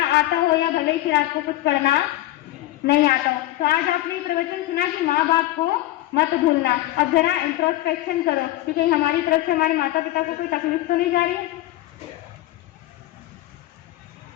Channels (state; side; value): quieter; right; 16.0 dB